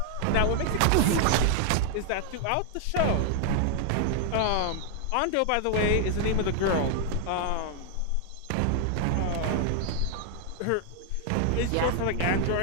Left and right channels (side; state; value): both; different; correlation 0.00